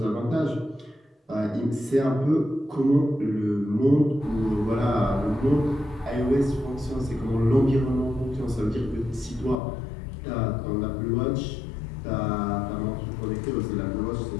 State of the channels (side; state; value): right; drops out; at 9.6 s